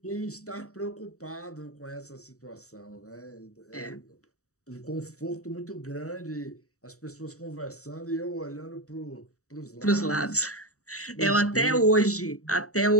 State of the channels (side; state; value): right; late; 0.65 ms